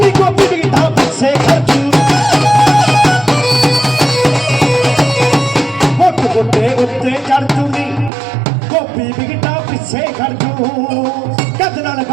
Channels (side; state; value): left; drops out; at 8.1 s